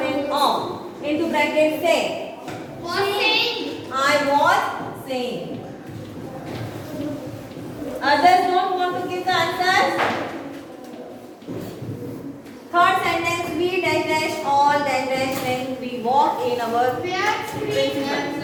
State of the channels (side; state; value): both; identical; correlation 1.00